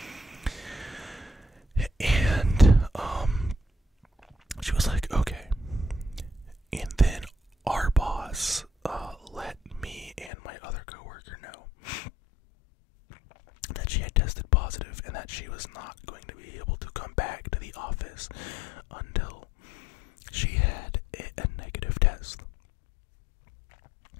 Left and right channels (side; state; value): right; drops out; at 10.3 s